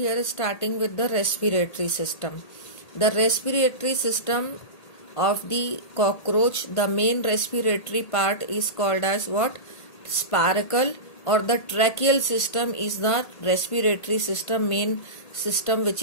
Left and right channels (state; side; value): late; right; 1.8 ms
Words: starting with the respiratory system. The respiratory system of the cockroach, the main respiratory part is called as what? Spiracle, or the tracheal system is the respiratory system, main system, which